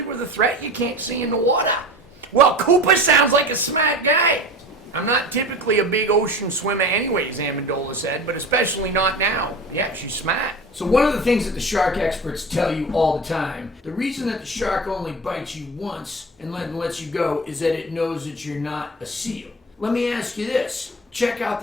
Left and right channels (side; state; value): both; normal; correlation 0.33